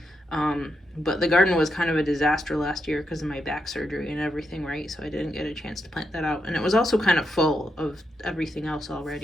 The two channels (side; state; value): both; normal; correlation 0.82